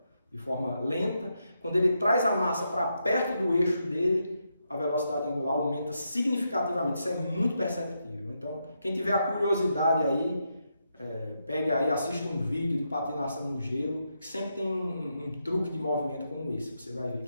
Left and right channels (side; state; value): both; inverted; correlation -0.82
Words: de forma lenta. Quando ele traz a massa para perto do eixo dele, a velocidade angular aumenta significativamente, isso é muito perceptível. Então quem tiver a curiosidade aí, pegue aí, assista um vídeo de patinação no gelo, que sempre tem um truque de movimento como esse. Você vai ver